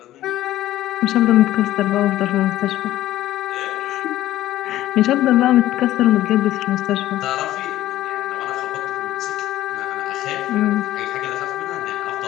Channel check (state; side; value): quieter; right; 14.3 dB